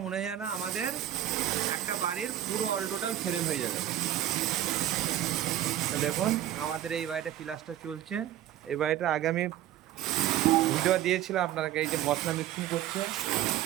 মনে হয় না, আমাদের একটা বাড়ির পুরো অল টোটাল ফ্রেম হয়ে যাবে। তো দেখুন, আমাদের এই বাড়িটা প্লাস্টার চলছে। এই বাড়িটা আগে আমি ভিডিও দিয়েছিলাম আপনাকে। এই যে মশলা মিক্সিং করছে,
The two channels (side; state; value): left; quieter; 12.5 dB